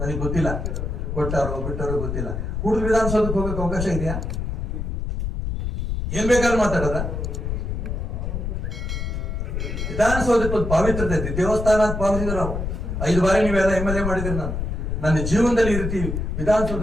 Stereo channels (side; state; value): left; noise; rumble, 3 dB below the sound